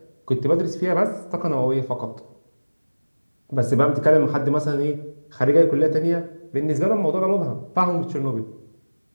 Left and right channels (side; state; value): both; inverted; correlation -1.00